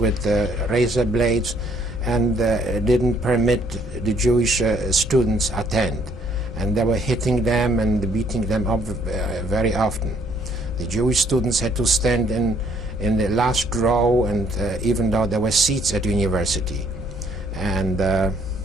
razor blades and didn't permit the Jewish students attend. And they were hitting them and beating them up very often. The Jewish students had to stand in the last row, and even though there were seats at the university. And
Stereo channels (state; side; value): normal; both; correlation 0.65